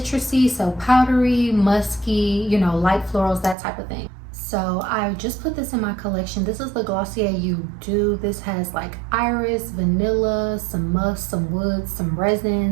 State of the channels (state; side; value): drops out; left; at 3.6 s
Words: So powdery, musky, light florals, that type of thing. So I just put this in my collection. This is the Glossier You Do. This has like iris, vanilla, some musk, some wood, some